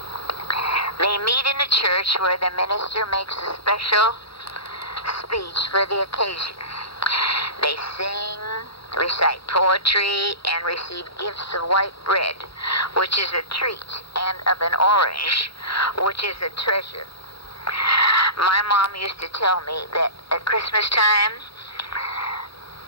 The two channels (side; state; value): right; late; 0.75 ms